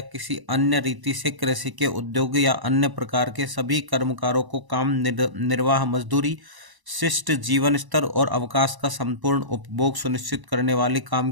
किसी अन्य रीति से कृषि के, उद्योग या अन्य प्रकार के सभी कर्मकारों को काम निर्वाह, मजदूरी, शिष्ट जीवन स्तर और अवकाश का संपूर्ण उपभोग सुनिश्चित करने वाली काम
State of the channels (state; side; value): late; left; 1.0 ms